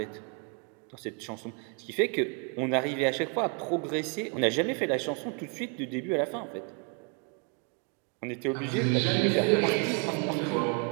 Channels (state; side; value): quieter; left; 35.8 dB